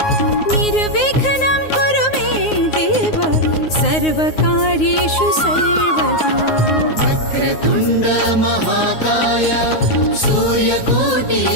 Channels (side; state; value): right; late; 9.5 ms